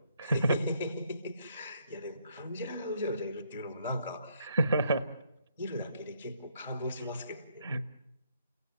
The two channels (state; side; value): inverted; both; correlation -0.71